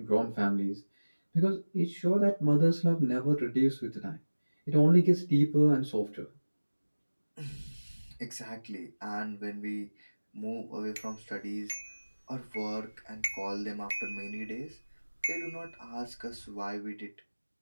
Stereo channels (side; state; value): both; inverted; correlation -1.00